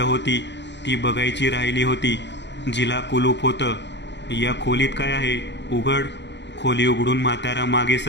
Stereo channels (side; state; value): right; late; 0.51 ms